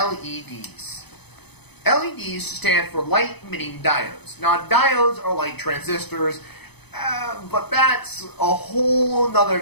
LEDs stand for light-emitting diodes. Now, diodes are like transistors, but that's a whole nother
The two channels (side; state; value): right; late; 0.98 ms